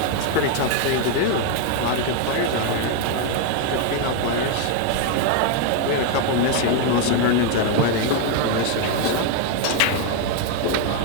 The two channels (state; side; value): different; both; correlation 0.01